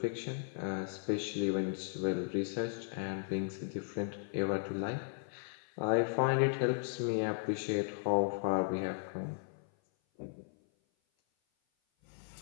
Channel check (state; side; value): silent; right; 54 dB below the other